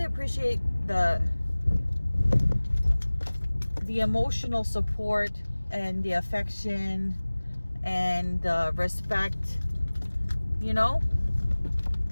appreciate the emotional support and the affection and the respect, you know?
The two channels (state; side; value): inverted; both; correlation -1.00